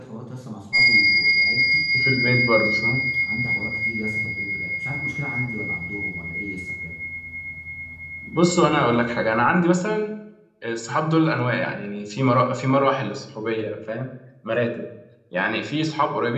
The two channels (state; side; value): identical; both; correlation 1.00